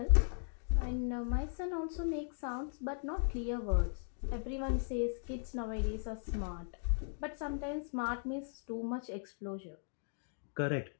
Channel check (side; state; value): right; silent; digital silence